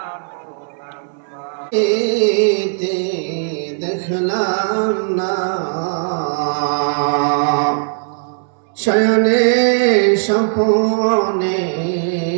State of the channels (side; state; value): left; silent; 68 dB below the other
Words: দেখলাম না শয়নে স্বপনে